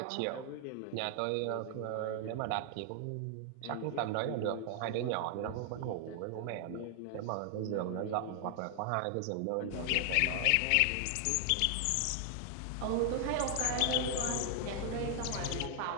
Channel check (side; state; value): both; different; correlation 0.00